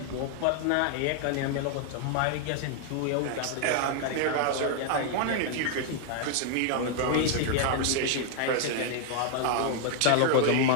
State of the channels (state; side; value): different; both; correlation 0.00